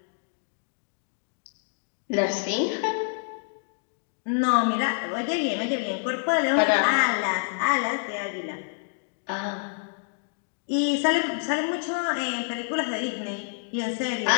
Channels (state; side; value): silent; right; digital silence